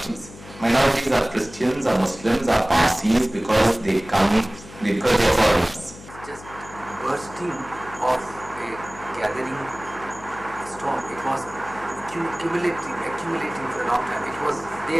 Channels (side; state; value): left; noise; hum, 18 dB below the sound